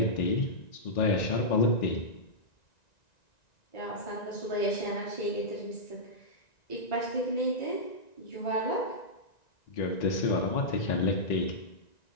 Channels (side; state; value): right; late; 1.9 ms